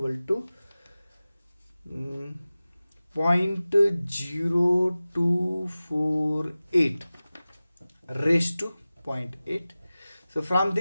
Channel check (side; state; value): both; inverted; correlation -0.97